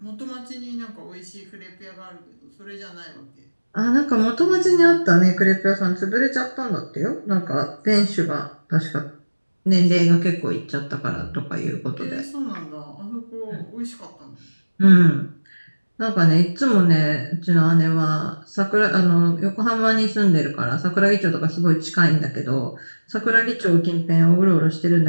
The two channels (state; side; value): inverted; both; correlation -1.00